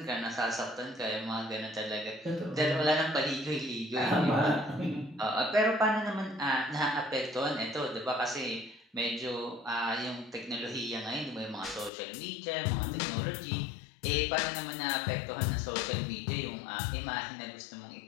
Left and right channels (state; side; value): drops out; right; at 11.9 s